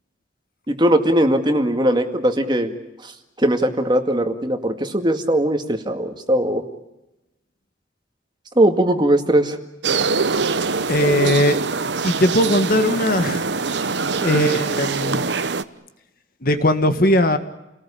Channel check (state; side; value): normal; both; correlation 0.44